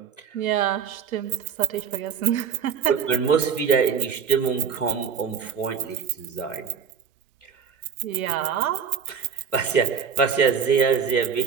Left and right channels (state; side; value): quieter; left; 6.9 dB